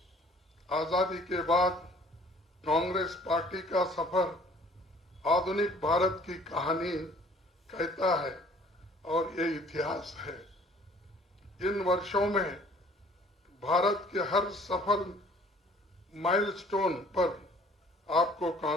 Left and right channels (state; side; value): normal; both; correlation 0.55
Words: आजादी के बाद कांग्रेस पार्टी का सफर आधुनिक भारत की कहानी कहता है और ये इतिहास है। इन वर्षों में भारत के हर सफल माइलस्टोन पर आपको